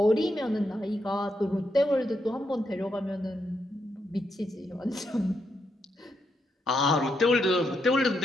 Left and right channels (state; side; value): normal; both; correlation 0.80